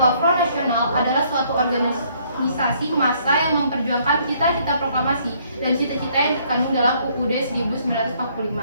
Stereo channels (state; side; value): inverted; both; correlation -0.65